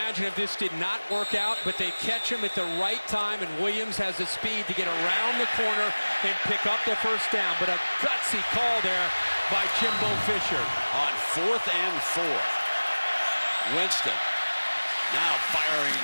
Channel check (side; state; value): both; inverted; correlation -1.00